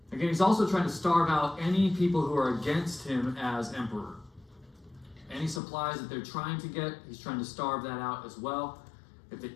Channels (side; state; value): right; drops out; at 5.6 s